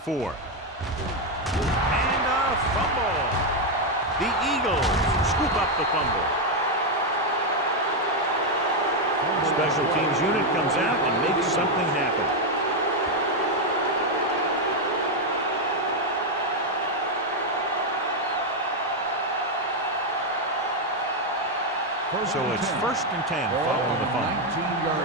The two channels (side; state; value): both; normal; correlation 0.03